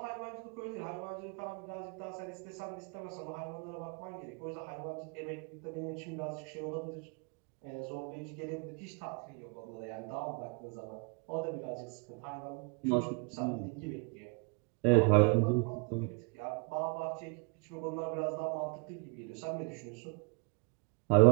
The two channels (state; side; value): quieter; left; 33.5 dB